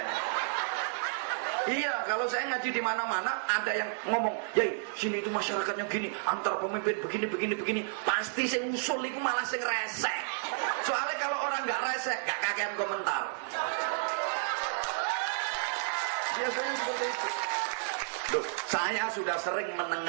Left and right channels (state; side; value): silent; left; digital silence